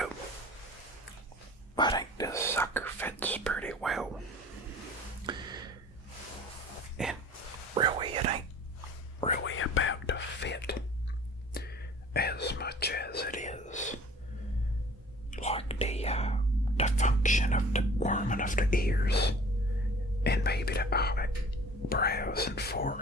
I think this sucker fits pretty well. And really, it ain't really about the fit as much as it is like the function of the warming of the ears and maybe the eyebrows and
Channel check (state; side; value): normal; both; correlation 0.47